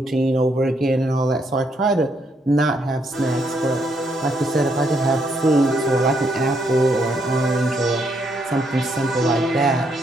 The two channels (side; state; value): both; normal; correlation 0.74